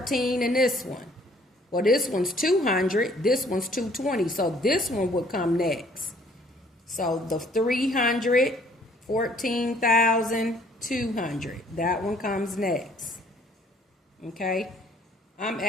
and this one. Well, this one's 200. This one's 220. So this one would come next. So the 314,200. That one comes next. Okay. I'm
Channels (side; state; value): both; normal; correlation 0.59